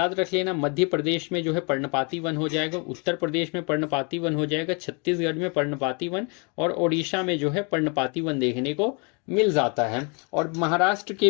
रख लेना, मध्य प्रदेश में जो है पर्णपाती वन हो जाएगा, उत्तर प्रदेश में पर्णपाती वन हो जाएगा, छत्तीसगढ़ में पर्णपाती वन, और ओडिशा में जो है पर्णपाती वन देखने को मिल जाता है। और महाराष्ट्र के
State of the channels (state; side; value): quieter; right; 34.1 dB